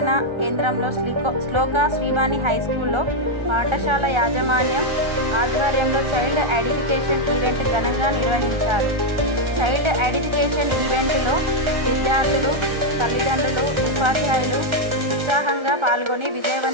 కేంద్రంలో శ్లోకా శ్రీవాణి హై స్కూల్లో పాఠశాల యాజమాన్యం ఆధ్వర్యంలో చైల్డ్ ఎడిఫికేషన్ ఈవెంట్ ఘనంగా నిర్వహించారు. చైల్డ్ ఎడిఫికేషన్ ఈవెంట్లో విద్యార్థులు, తల్లిదండ్రులు, ఉపాధ్యాయులు ఉత్సాహంగా పాల్గొని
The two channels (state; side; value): late; left; 1.3 ms